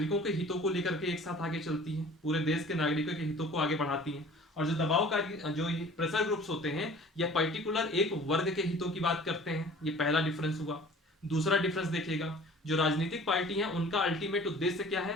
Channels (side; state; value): both; normal; correlation 0.47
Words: के हितों को लेकर के एक साथ आगे चलती हैं, पूरे देश के नागरिकों के हितों को आगे बढ़ाती हैं। और जो दबावकारी जो प्रेशर ग्रुप्स होते हैं, यह पर्टिकुलर एक वर्ग के हितों की बात करते हैं। ये पहला डिफरेंस हुआ। दूसरा डिफरेंस देखिएगा, जो राजनीतिक पार्टी है उनका अल्टीमेट उद्देश्य क्या